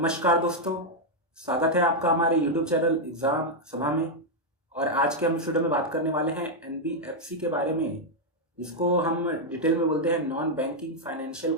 दोस्तों, स्वागत है आपका हमारे YouTube चैनल एग्जाम सभा में। और आज के हम इस वीडियो में बात करने वाले हैं एनबीएफसी के बारे में, जिसको हम डिटेल में बोलते हैं नॉन बैंकिंग फाइनेंशियल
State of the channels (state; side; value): normal; both; correlation -0.01